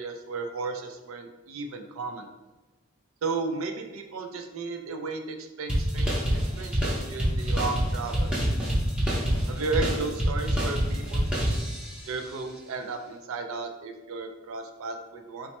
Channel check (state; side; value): normal; both; correlation 0.65